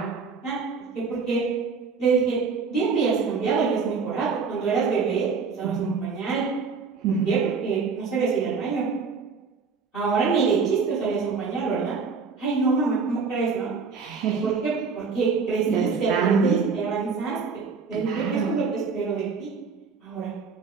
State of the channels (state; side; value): quieter; left; 5.1 dB